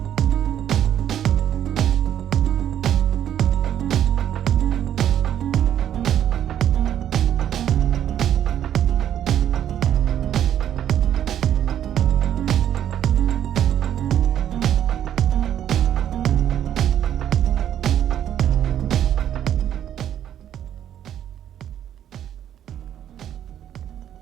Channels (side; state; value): left; quieter; 10.5 dB